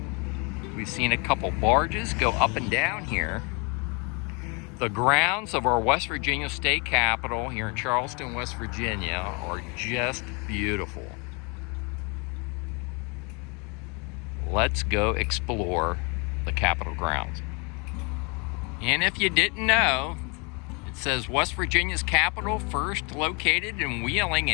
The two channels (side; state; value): right; quieter; 31.8 dB